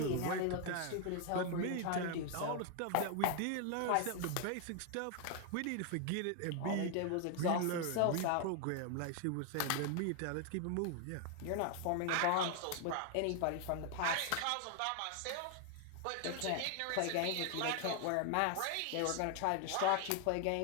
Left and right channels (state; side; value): different; both; correlation 0.00